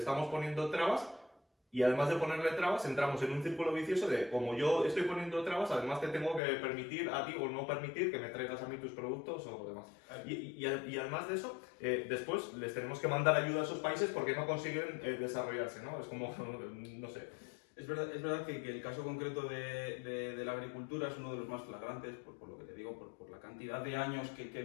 poniendo trabas. Y además de ponerle trabas, entramos en un círculo vicioso de, como yo estoy poniendo trabas, además te tengo que permitir a ti o no permitir que me traigas a mí tus productos o demás. Y además de eso, después les tenemos que mandar ayuda a esos países porque no consiguen desarrollarse, ¿no? Es como, no sé. Es verdad que el caso concreto de la agricultura es uno de los más flagrantes, por lo que te digo, por la cantidad de años que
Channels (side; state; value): right; drops out; at 6.4 s